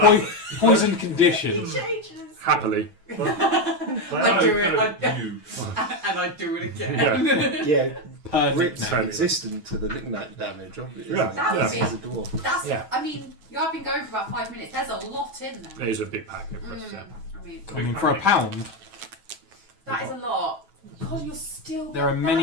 that's- Poison condition. Changes. Happily. I do it. You. And I do it again. Yeah. Yeah, Perfect Rip's name. resistant to the knickknack damage, obviously. Yeah. That was He's a dwarf. That's. Yeah. I mean, you have been going for about 5 minutes. There's a lot in there. It is a big pack of us, yeah. I mean, For a pound, that is a lot. God, you're still. there are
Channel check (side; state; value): left; late; 6.3 ms